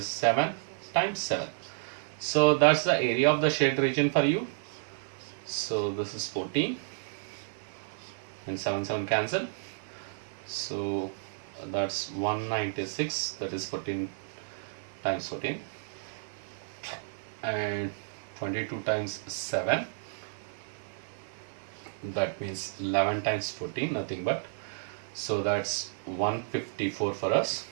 7 times 7. So that's the area of the shaded region for you. So this is 14 and 7 cancel. So that's 196, that is 14 times 14 and 22 times 7, that means 11 times 14, nothing but. So that's 154 for us.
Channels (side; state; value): left; silent; digital silence